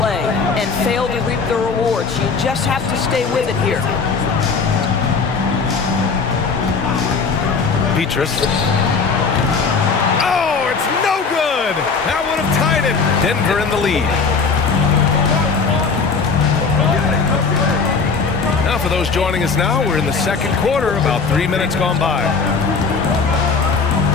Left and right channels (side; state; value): right; quieter; 4.9 dB